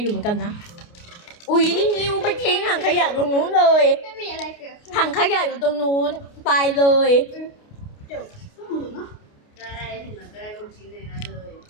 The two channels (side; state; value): right; late; 29 ms